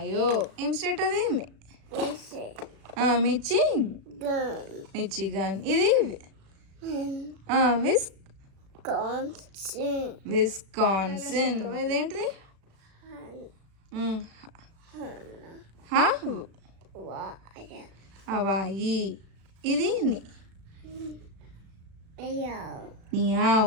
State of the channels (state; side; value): late; left; 36 ms